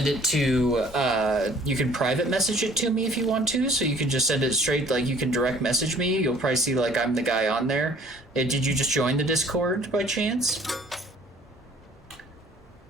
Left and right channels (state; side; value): normal; both; correlation 0.55